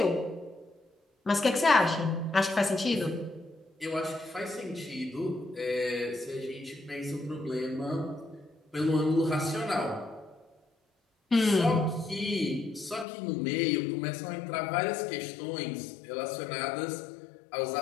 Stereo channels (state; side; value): drops out; right; at 13.1 s